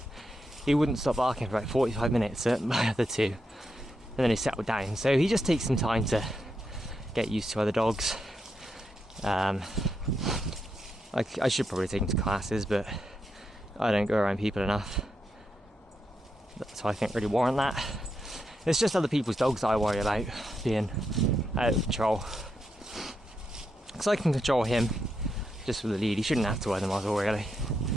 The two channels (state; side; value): normal; both; correlation 0.83